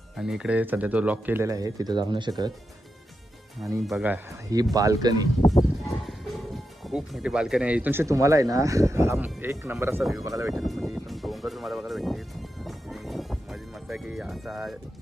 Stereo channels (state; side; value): normal; both; correlation 0.87